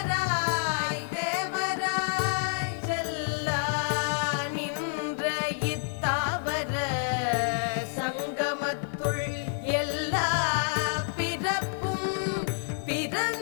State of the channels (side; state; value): right; silent; digital silence